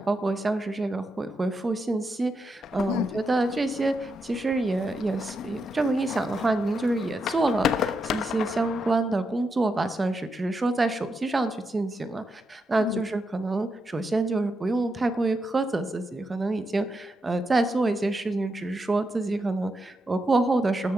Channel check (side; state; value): both; normal; correlation 0.84